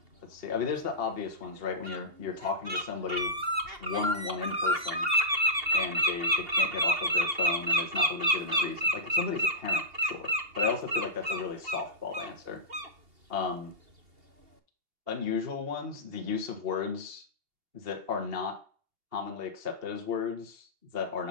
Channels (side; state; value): left; late; 2.8 ms